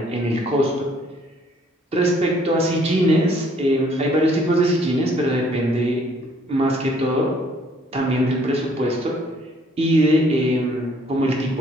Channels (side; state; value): both; normal; correlation 0.62